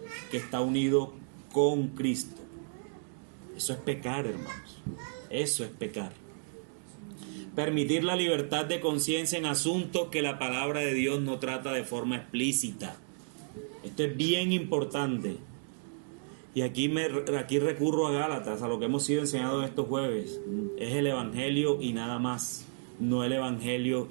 que está unido con Cristo. Eso es pecar, hermanos. Eso es pecar. Permitir la libertad de conciencia en asuntos que la palabra de Dios no trata de forma explícita. Esto es bien importante. Y aquí recurro a Gálatas, a lo que hemos sido enseñados estos jueves. Es el Evangelio y nada más. No el Evangelio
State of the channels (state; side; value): silent; left; digital silence